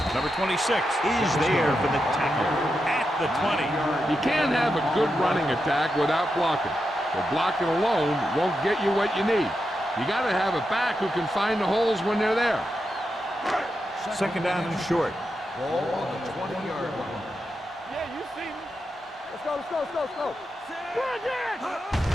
Number 26 is there for the tackle at the 20. You can't have a good running attack without blocking. But blocking alone won't get you what you need. You got to have a back who can find the holes when they're there. Second down and short. Ball on the 20-yard line. Yeah, you see me. Let's go, let's go, let's go, let's go. Good again.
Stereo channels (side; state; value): both; normal; correlation 0.87